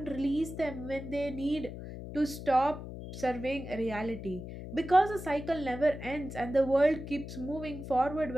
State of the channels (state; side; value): noise; left; hum, 10 dB below the sound